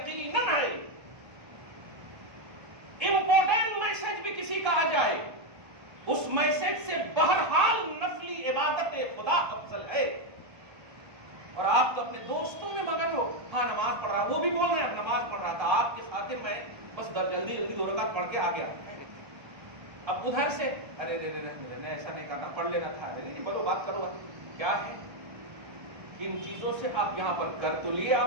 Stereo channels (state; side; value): late; left; 1.3 ms